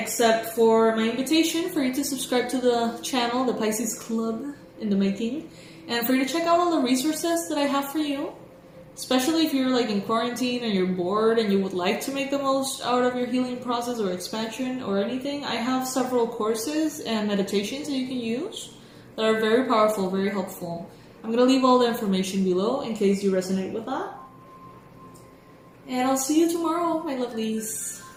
for my invitation for you to subscribe to the channel, the Pisces Club in the making, and for you to check out all the resources that I have for you, especially if you're like in quarantine and you're bored and you would like to make the most out of your healing process or expansion or anything. I have several courses and meditations that you can use that are very powerful, very helpful. I'm going to leave all the information below in case you resonate with that. And I'll see you tomorrow, my lovelies.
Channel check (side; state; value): both; identical; correlation 1.00